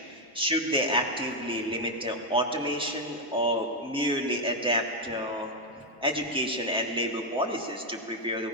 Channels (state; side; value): normal; both; correlation 0.02